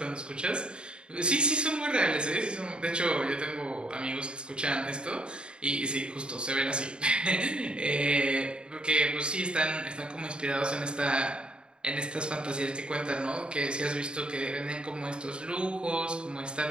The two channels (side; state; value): left; late; 0.052 ms